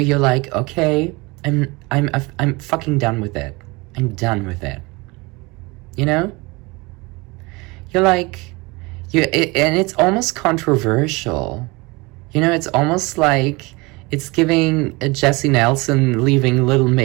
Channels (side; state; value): left; quieter; 25.0 dB